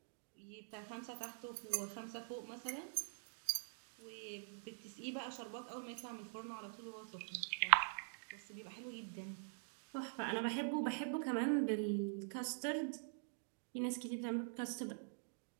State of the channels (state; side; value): silent; left; digital silence